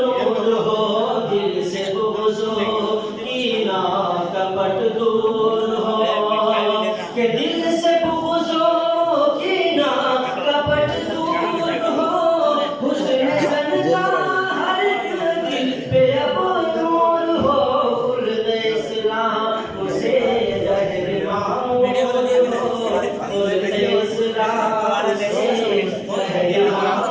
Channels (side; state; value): both; identical; correlation 1.00